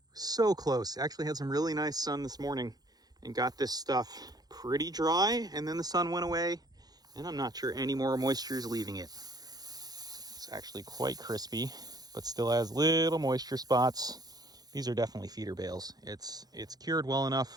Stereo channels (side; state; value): left; late; 0.19 ms